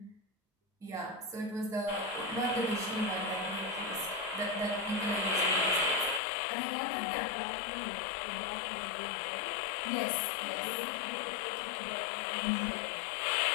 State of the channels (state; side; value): drops out; right; at 6.2 s